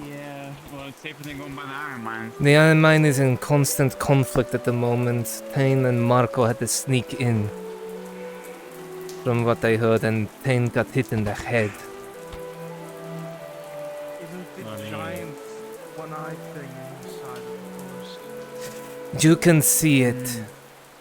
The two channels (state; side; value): identical; both; correlation 1.00